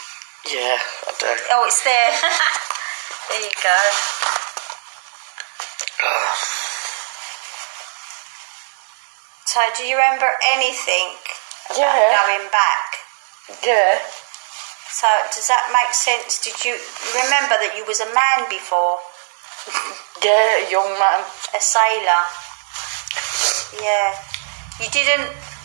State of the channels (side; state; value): left; silent; digital silence